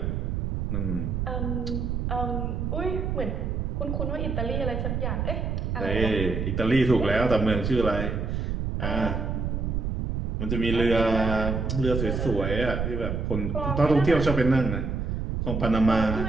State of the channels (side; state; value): right; noise; rumble, 1 dB below the sound